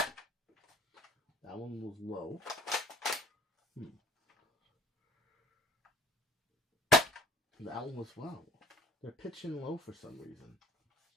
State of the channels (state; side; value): normal; both; correlation 0.52